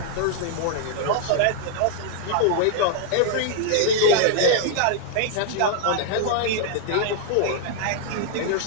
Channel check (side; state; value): both; different; correlation 0.00